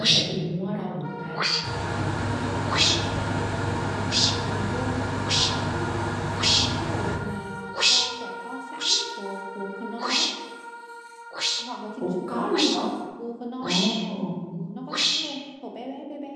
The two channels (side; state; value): both; identical; correlation 1.00